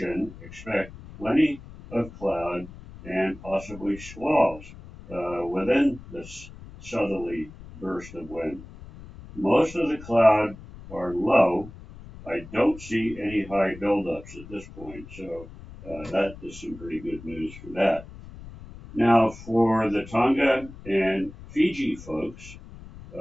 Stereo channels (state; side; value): noise; left; rumble, 16 dB below the sound